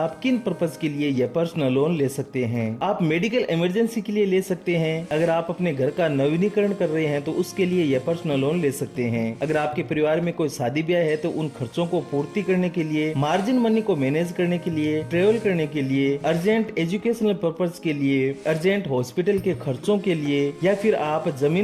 किन पर्पज के लिए यह पर्सनल लोन ले सकते हैं। आप मेडिकल इमरजेंसी के लिए ले सकते हैं। अगर आप अपने घर का नवीनीकरण कर रहे हैं तो उसके लिए यह पर्सनल लोन ले सकते हैं। अगर आपके परिवार में कोई शादी ब्याह है तो उन खर्चों को पूर्ति करने के लिए, मार्जिन मनी को मैनेज करने के लिए, ट्रेवल करने के लिए, अर्जेंट एजुकेशनल पर्पज के लिए, अर्जेंट हॉस्पिटल के खर्चों के लिए, या फिर आप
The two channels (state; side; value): identical; both; correlation 1.00